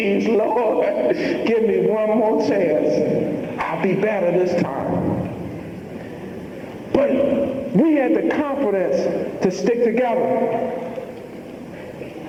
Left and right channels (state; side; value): identical; both; correlation 1.00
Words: Lord, give me one more chance. I'll be better this time. But we had the confidence to stick together